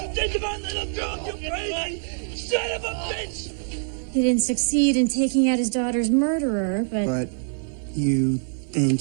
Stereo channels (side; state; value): left; silent; 56 dB below the other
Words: You think about little girl, you crazy son of a bitch! He didn't succeed in taking out his daughter's murderer, But you think